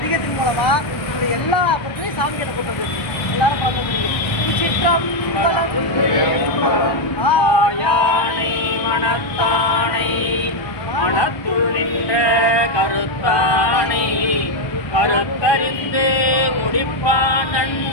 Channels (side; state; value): right; late; 1.2 ms